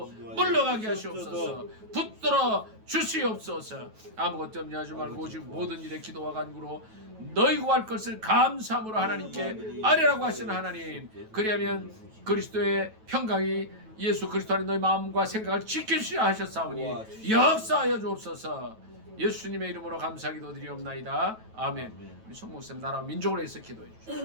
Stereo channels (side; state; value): left; late; 9.2 ms